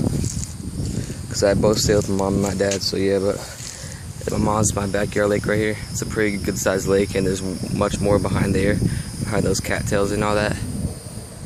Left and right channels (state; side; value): identical; both; correlation 1.00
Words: because I both stay with my mom and my dad. So yeah, but at my mom's, my backyard lake right here. It's a pretty good sized lake, and there's much more behind there, behind those cattails and all that.